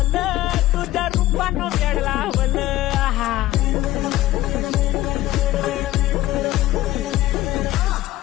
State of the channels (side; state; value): right; quieter; 15.5 dB